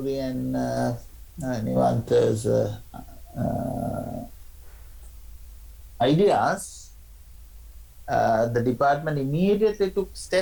and Nivanta's ideas, the department immediately took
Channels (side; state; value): both; identical; correlation 1.00